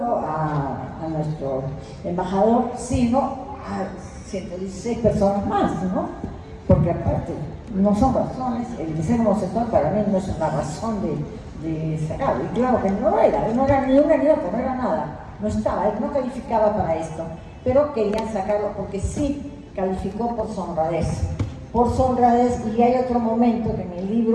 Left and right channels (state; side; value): identical; both; correlation 1.00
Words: a nuestro embajador, sino a 116 personas más, ¿no? Porque aparte, no son razones, el de ser homosexual para mí no es una razón de sacarlo. Y claro que no era ni una ni otra, no era nada, no estaba, él no calificaba para esto, pero querían sacarlo porque sí calificó por su honradez. Por su honradez, y hay otro momento que en el